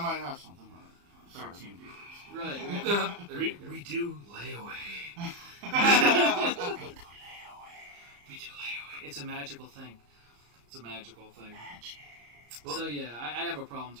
have something. 13 viewers. Right. we do layaway. We do layaway. It's a magical thing. Well, so yeah, I have a problem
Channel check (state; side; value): late; left; 34 ms